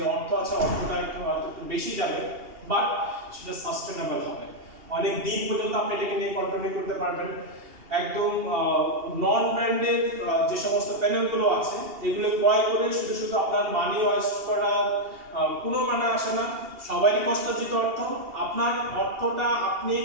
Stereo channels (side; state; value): left; late; 2.8 ms